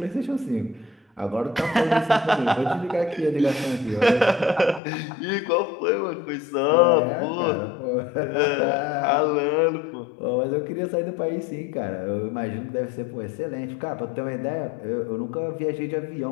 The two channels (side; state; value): right; drops out; at 4.8 s